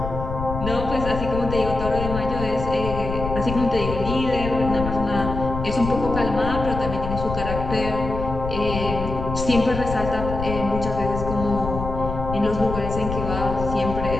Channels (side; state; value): left; noise; rumble, 6 dB below the sound